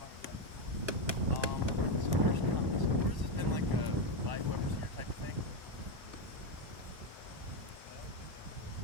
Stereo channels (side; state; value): left; late; 1.1 ms